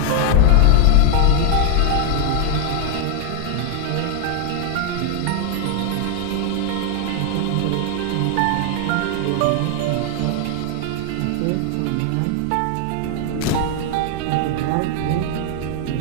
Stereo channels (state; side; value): different; both; correlation 0.00